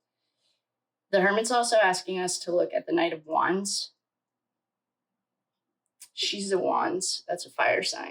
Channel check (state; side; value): identical; both; correlation 1.00